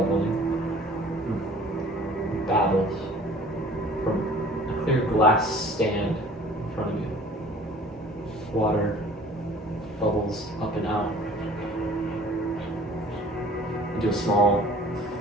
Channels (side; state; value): both; normal; correlation 0.49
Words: It babbles from a clear glass stand in front of you. Water bubbles up and out into a small